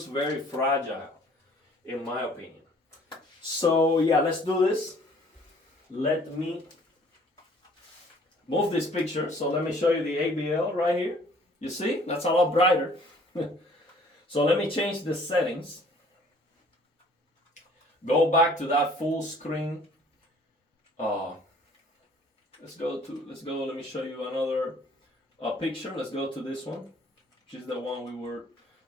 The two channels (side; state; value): both; normal; correlation 0.56